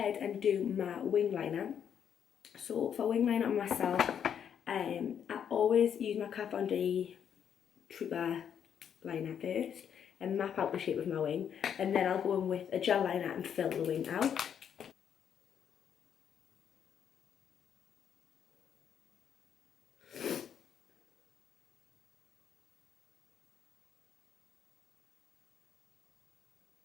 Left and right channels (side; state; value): right; quieter; 8.4 dB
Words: and do my wing liner. So for wing liner on myself, I always use my Kat Von D Trooper liner first and map out the shape of my wing, and then I'll go in with a gel liner and fill the wing out.